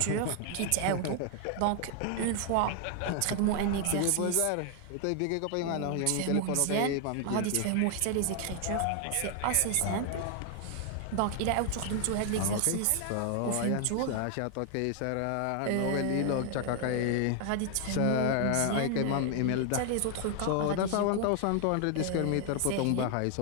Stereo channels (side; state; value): both; different; correlation 0.00